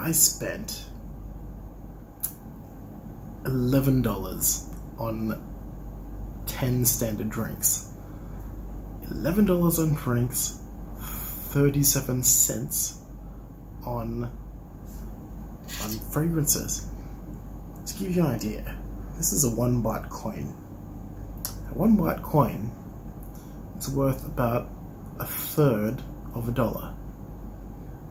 spent $11 on 10 standard drinks. $11 on drinks, 37 cents on fragrances. To give you an idea, this is a 1 baht coin. A 1 baht coin is worth about a third of a dollar.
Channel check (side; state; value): both; identical; correlation 1.00